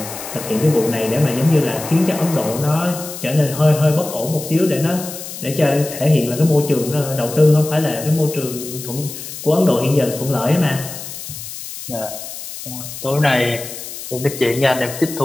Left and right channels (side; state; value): left; noise; hiss, 10 dB below the sound